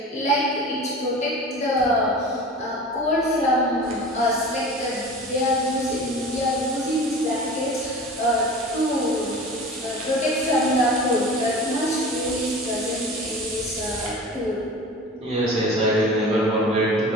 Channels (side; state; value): both; normal; correlation 0.37